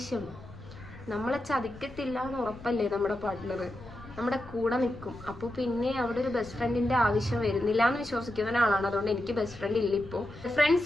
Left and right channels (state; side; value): noise; left; rumble, 17 dB below the sound